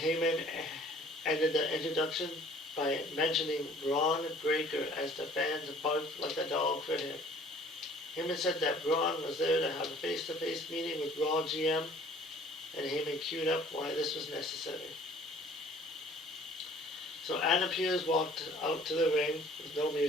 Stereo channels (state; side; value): normal; both; correlation 0.53